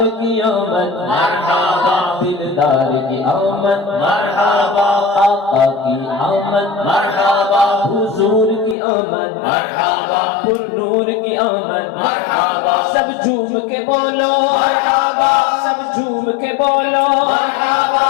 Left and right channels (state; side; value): drops out; right; at 8.8 s